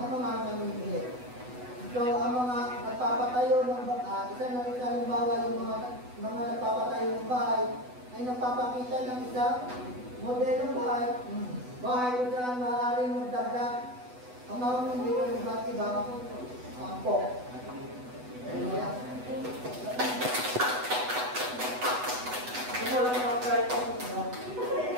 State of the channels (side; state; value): left; late; 8.1 ms